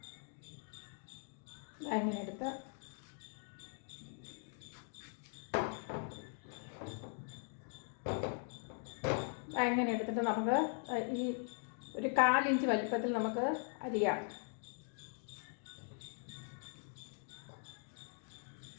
അങ്ങനെ എടുത്ത് അങ്ങനെ എടുത്തിട്ട് നമുക്ക് ഈ ഒരു 1/4 ഇഞ്ച് വലിപ്പത്തിൽ നമുക്ക് അരിയാം.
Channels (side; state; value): right; silent; 50 dB below the other